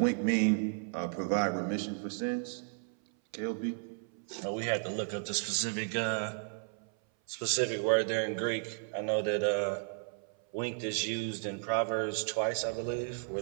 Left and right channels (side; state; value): left; silent; 55 dB below the other